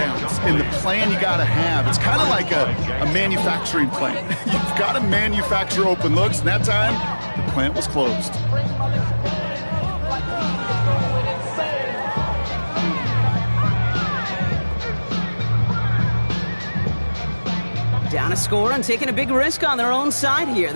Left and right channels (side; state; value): both; inverted; correlation -1.00